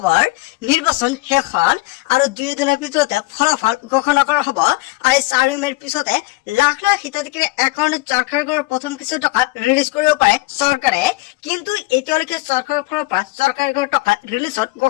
নিৰ্বাচন শেষ হল আৰু 2 দিনৰ ভিতৰতে ফলাফল ঘোষণা কৰা হ'ব আৰু 4 মেৰ পিছতে লাখ লাখ হিতাধিকাৰীৰ একাউণ্টত চৰকাৰী ঘৰৰ প্ৰথম কিস্তি টকা ৰিলিজ কৰিব পাৰে চৰকাৰে। কিন্তু এতিয়ালৈকে চৰকাৰৰ ফালৰ পৰা চৰকাৰী ঘৰৰ টকা ৰিলিজত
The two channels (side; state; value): right; quieter; 21.4 dB